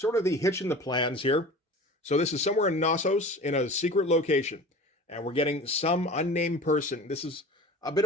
of the hitch in the plans here. So this is somewhere in Knossos in a secret location. And we're getting some unnamed person. This is a bit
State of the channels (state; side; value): normal; both; correlation 0.38